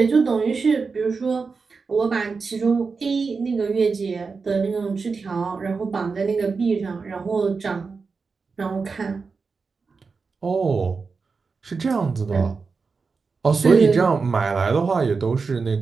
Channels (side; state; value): left; quieter; 4.7 dB